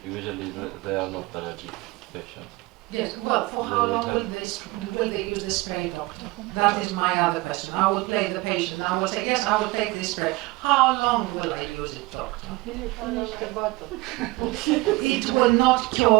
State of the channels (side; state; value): left; quieter; 22.2 dB